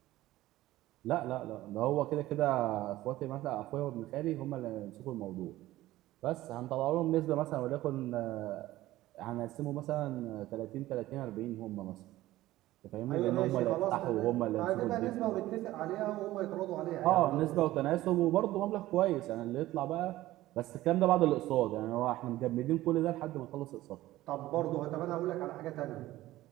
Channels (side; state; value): left; quieter; 16.1 dB